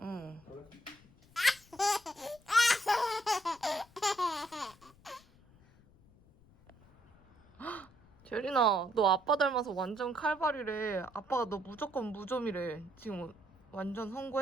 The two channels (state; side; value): noise; left; rumble, 27 dB below the sound